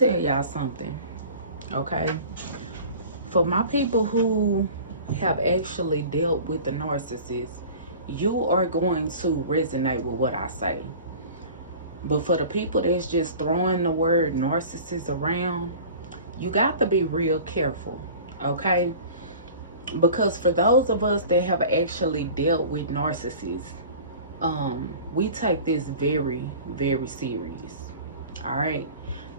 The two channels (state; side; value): inverted; both; correlation -0.41